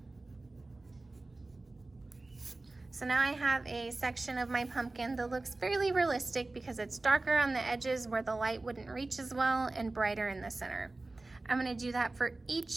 So now I have a section of my pumpkin that looks fairly realistic because it's darker on the edges where the light wouldn't reach as well and brighter in the center. I'm going to do that for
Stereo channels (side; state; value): left; quieter; 3.1 dB